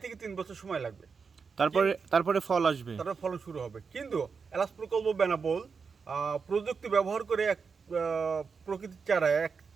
থেকে 3 বছর সময় লাগবে। তারপরে ফল আসবে, তারপরে ফলন শুরু হবে। কিন্তু এলাচ প্রকল্প বেনাপোল প্রযুক্তি ব্যবহার করে এক প্রকৃতির চারা, এক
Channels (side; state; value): left; quieter; 5.4 dB